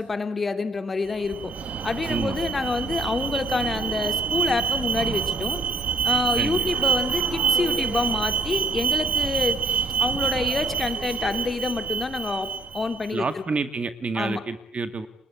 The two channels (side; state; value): both; normal; correlation 0.60